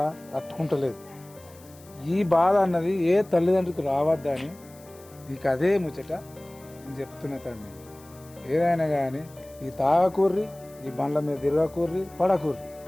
తట్టుకుంటలేదు. ఈ బాధ అన్నది ఏ తల్లిదండ్రులకు రావద్దని నీకు అదే ముచ్చట నేను చెప్తున్నా తమ్మి. ఏదైనా కానీ ఈ తాగకూర్రి, ఈ బండ్ల మీద తిరగకూర్రి, పడకూర్రి,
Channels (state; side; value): noise; left; hiss, 24 dB below the sound